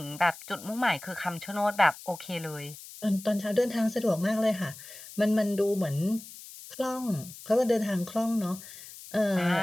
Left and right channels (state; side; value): noise; left; hiss, 15 dB below the sound